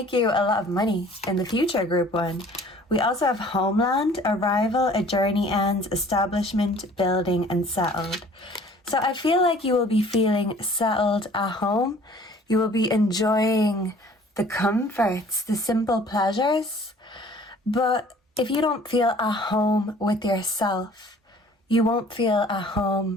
you a lot of money in the future, group one. We also have homeland, arrival, a journey ends, establishment, building, and settled. So I feel like you will be feeling settled at home. You will be enjoying the comforts, the simple pleasures. But if you don't feel at home with yourself, you won't feel at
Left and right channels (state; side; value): normal; both; correlation 0.52